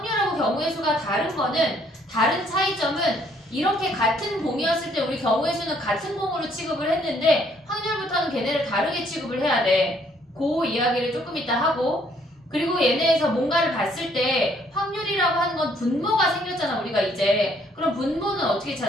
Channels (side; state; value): both; normal; correlation 0.66